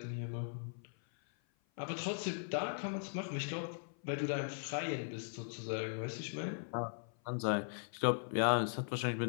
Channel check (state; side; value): silent; right; 52 dB below the other